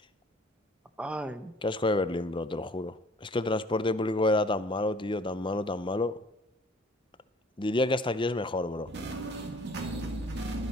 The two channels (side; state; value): both; normal; correlation 0.53